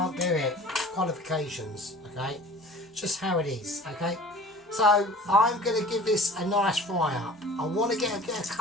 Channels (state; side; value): normal; both; correlation 0.44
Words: do it. Qualifications, okay? Just how it is, okay? So I'm going to give this a nice fry up. I want to get a bit of